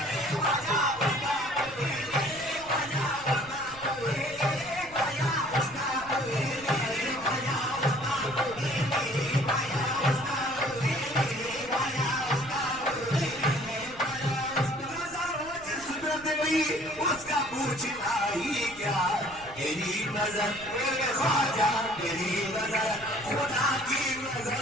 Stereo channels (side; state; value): right; noise; rumble, 21 dB below the sound